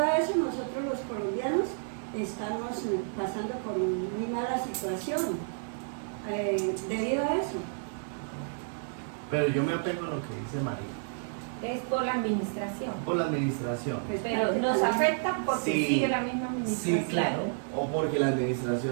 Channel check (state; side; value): silent; left; 57 dB below the other